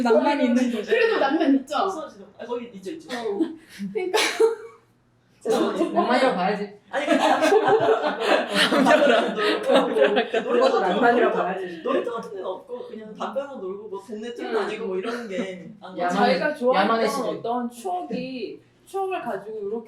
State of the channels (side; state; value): both; identical; correlation 1.00